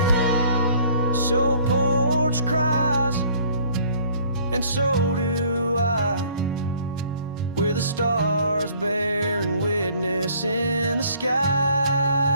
So porch cries, and so do I, with the stars bearing witness in the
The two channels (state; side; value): inverted; both; correlation -0.56